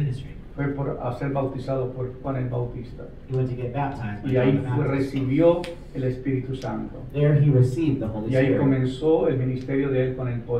fue a ser bautizado por Juan el Bautista. he went to get baptized by Y ahí John the Baptist. recibió el Espíritu Santo. There he received the Holy Y ahí Spirit. comenzó el ministerio de él con el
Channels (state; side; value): identical; both; correlation 1.00